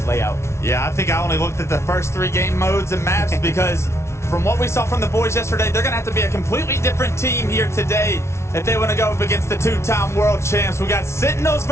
layout? Yeah, I think I only looked at the first 3 game modes and maps because from what we saw from the boys yesterday, they're gonna have to be a completely different team here today if they want to go up against the 2-time world champs. We got Sentinels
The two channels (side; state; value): right; late; 0.13 ms